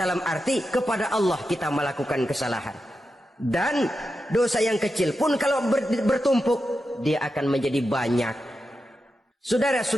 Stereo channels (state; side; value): normal; both; correlation 0.89